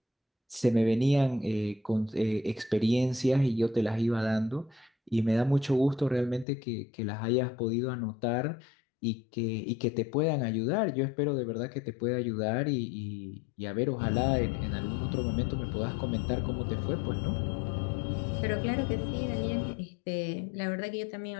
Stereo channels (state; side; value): drops out; right; at 6.5 s